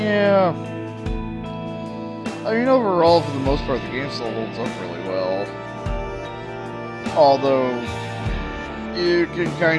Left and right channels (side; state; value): both; identical; correlation 1.00